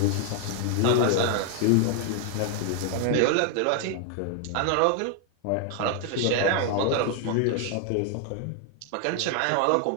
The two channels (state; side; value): different; both; correlation 0.00